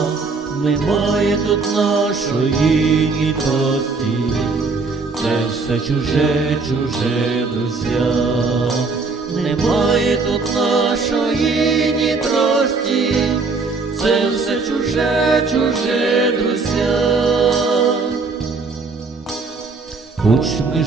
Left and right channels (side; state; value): left; quieter; 4.1 dB